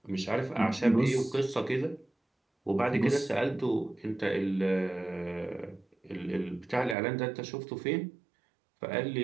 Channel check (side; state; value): left; drops out; at 7.0 s